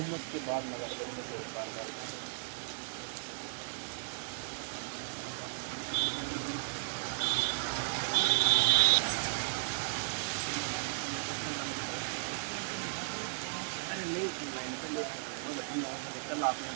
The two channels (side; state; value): left; silent; digital silence